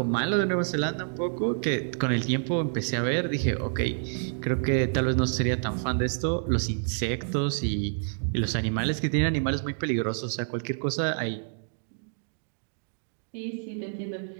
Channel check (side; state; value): left; silent; digital silence